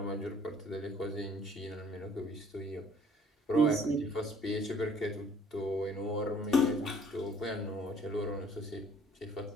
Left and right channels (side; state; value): both; normal; correlation 0.57